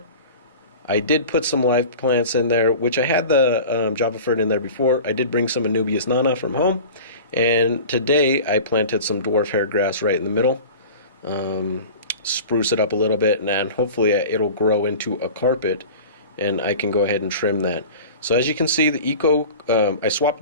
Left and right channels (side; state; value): both; inverted; correlation -0.37